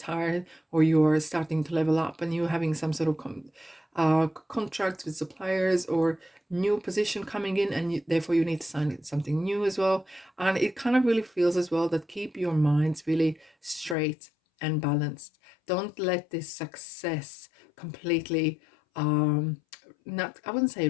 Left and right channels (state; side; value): drops out; right; at 14.0 s